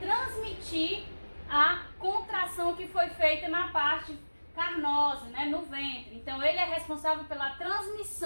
a contração que foi feita na parte carnosa, né? No ventre. Então ele é responsável pela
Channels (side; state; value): both; inverted; correlation -1.00